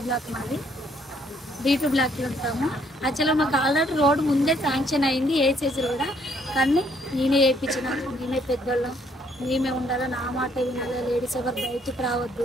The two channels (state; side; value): normal; both; correlation 0.67